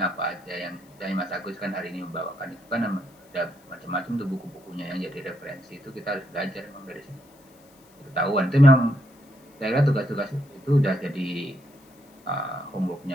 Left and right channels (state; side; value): noise; left; hiss, 29 dB below the sound